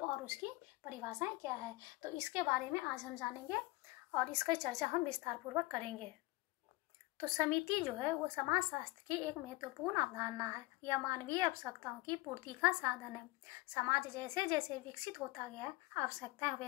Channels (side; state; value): right; quieter; 20.9 dB